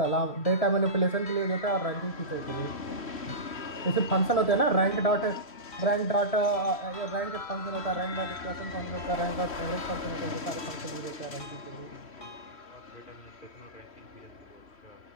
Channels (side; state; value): right; late; 3.1 ms